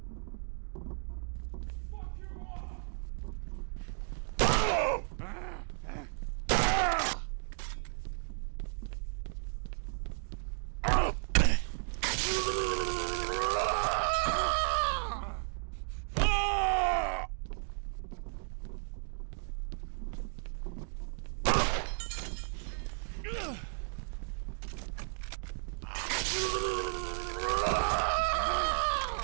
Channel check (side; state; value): left; silent; 55 dB below the other